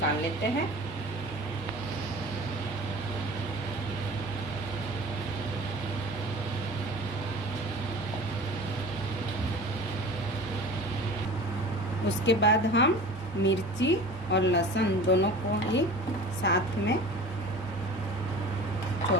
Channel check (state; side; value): normal; both; correlation 0.39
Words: लेते हैं। उसके बाद हम मिर्ची और लहसुन दोनों को ही साथ में